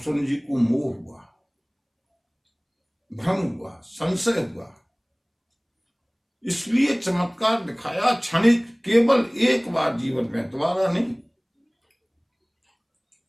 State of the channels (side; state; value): both; identical; correlation 1.00